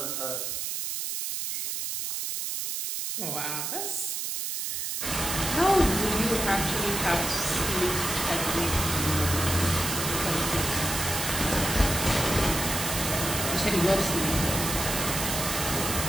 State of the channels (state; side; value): noise; right; hiss, 2 dB below the sound